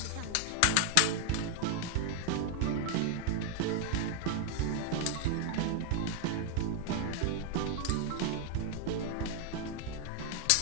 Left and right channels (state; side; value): different; both; correlation 0.00